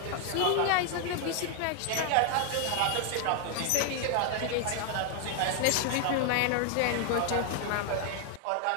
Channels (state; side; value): different; both; correlation 0.00